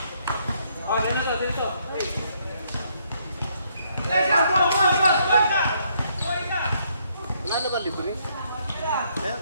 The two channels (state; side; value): inverted; both; correlation -0.71